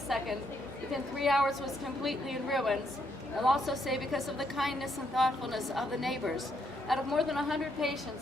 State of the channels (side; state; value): both; normal; correlation 0.74